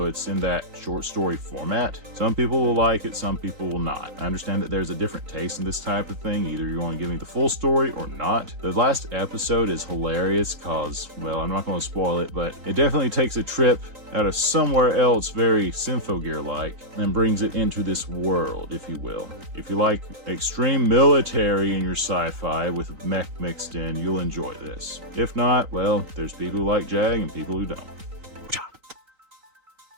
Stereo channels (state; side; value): late; left; 3.9 ms